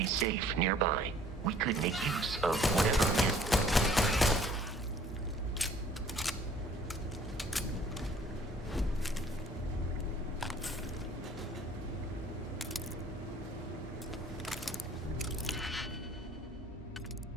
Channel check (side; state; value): both; normal; correlation 0.56